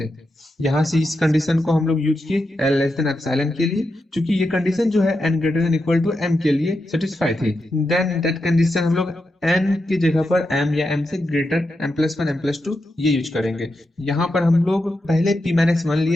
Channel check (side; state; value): both; normal; correlation 0.87